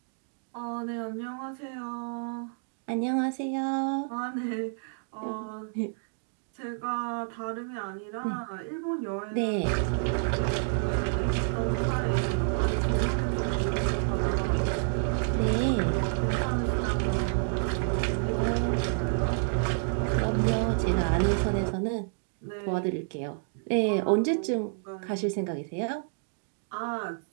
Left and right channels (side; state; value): left; silent; digital silence